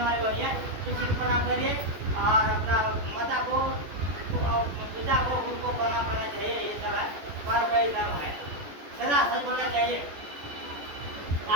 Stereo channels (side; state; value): left; late; 14 ms